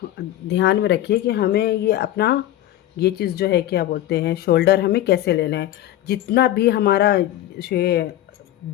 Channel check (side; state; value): right; quieter; 13.6 dB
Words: ध्यान में रखिए कि हमें ये अपना ये चीज़ जो है क्या बोलते हैं, शोल्डर हमें कैसे लेना है। जितना भी हमारा